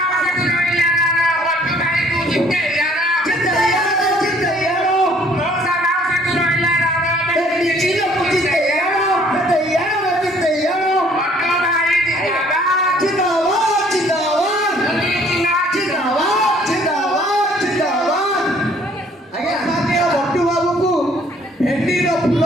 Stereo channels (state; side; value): normal; both; correlation 0.59